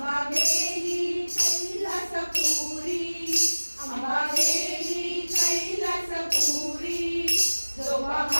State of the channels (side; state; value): both; inverted; correlation -1.00